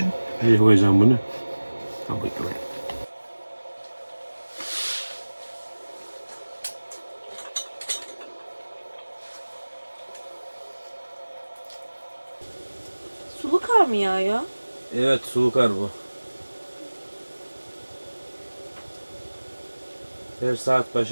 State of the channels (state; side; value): inverted; both; correlation -1.00